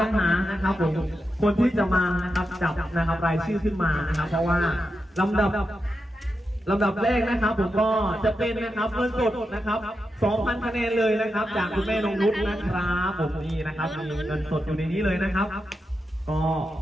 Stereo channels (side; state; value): both; normal; correlation 0.88